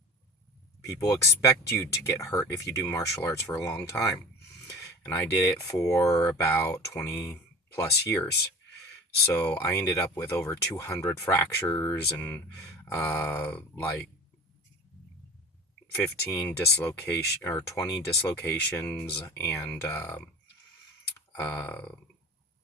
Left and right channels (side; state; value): both; normal; correlation 0.38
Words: People expect you to get hurt if you do martial arts for a long time. And I did it for about 20 plus years. So I ended up with over 200 fractures and like 15 dislocation or 20 dislocations, and uh,